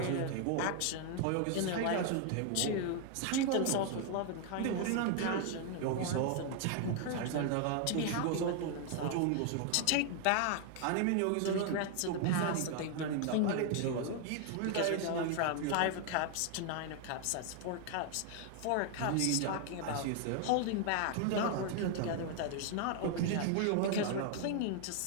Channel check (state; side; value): different; both; correlation 0.00